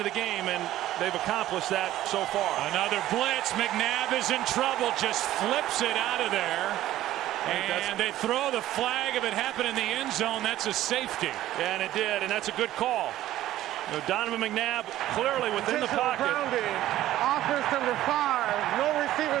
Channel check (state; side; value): quieter; left; 14.1 dB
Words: the game, and they've accomplished that so far. Another blitz. McNabb is in trouble. Just flips it out of there. And they throw the flag. If it happened in the end zone, that's a safety. Yeah, and it did, and that's a good call. Donovan McNabb clearly within the pocket. Grounding. Offense number 5. No receiver